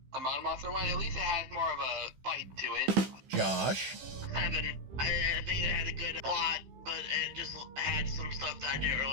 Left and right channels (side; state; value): left; late; 15 ms